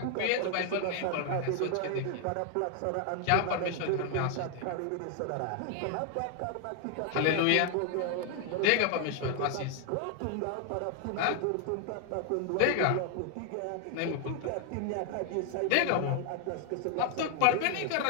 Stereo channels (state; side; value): different; both; correlation 0.00